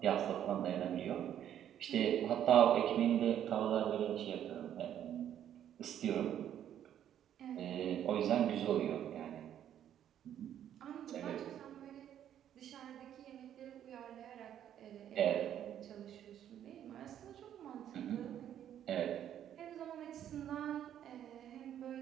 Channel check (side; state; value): left; quieter; 10.4 dB